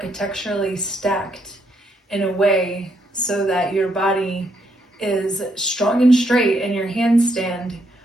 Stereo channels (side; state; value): both; normal; correlation 0.75